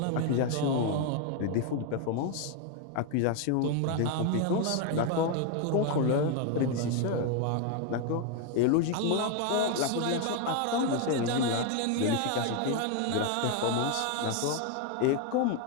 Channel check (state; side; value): different; both; correlation 0.01